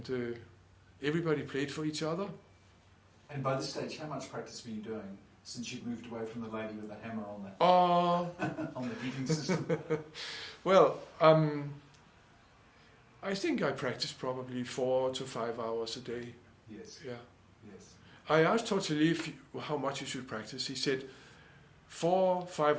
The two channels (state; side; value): identical; both; correlation 1.00